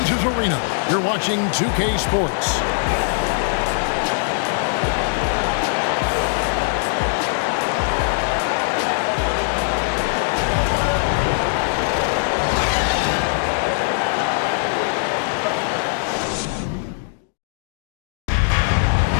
Arena, you're watching 2K Sports.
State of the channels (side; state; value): right; silent; digital silence